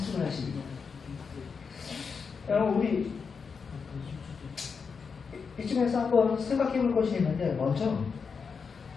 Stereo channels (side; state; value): right; quieter; 5.6 dB